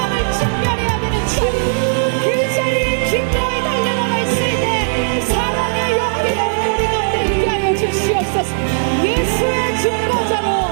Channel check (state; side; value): silent; left; 61 dB below the other